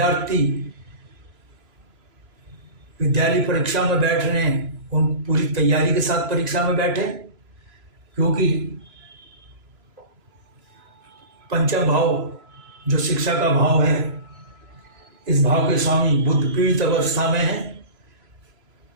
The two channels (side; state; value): left; late; 3.0 ms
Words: विद्यालय परीक्षा में बैठ रहे हैं, उन पूरी तैयारी के साथ परीक्षा में बैठे, क्योंकि पंचम भाव जो शिक्षा का भाव है, इस भाव के स्वामी बुध पीड़ित अवस्था में है।